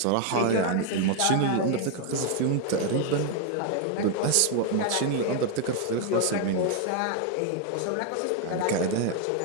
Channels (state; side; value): different; both; correlation 0.01